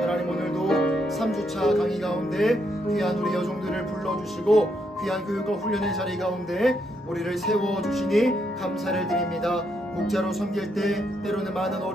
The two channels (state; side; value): normal; both; correlation 0.77